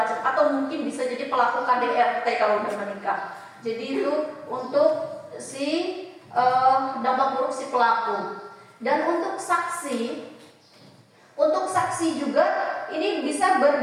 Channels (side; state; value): both; identical; correlation 1.00